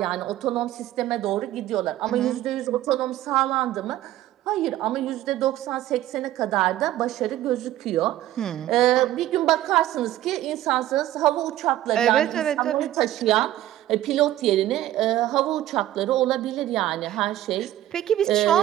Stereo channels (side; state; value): left; quieter; 13.9 dB